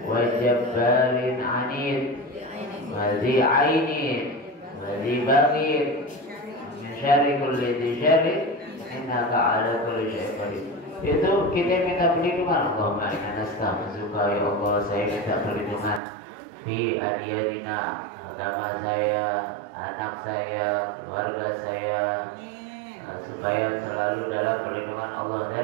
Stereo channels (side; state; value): left; drops out; at 16.0 s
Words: wa jabbarin anid wa zi ainin wa zi baghid min syarri kulli dhi syarri innaka ala kulli syai'in qadir. Itu kita minta perlindungan. Allahumma inna nastaghfiruka, ya Allah, saya minta perlindungan fi adyanina, agama saya, anak saya, keluarga saya, supaya selalu dalam perlindungan Allah.